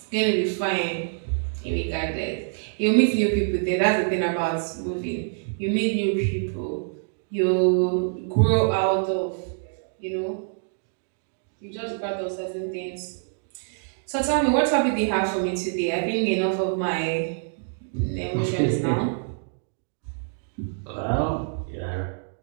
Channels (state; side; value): silent; left; digital silence